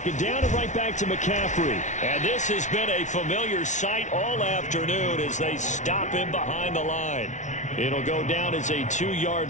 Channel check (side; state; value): right; late; 0.36 ms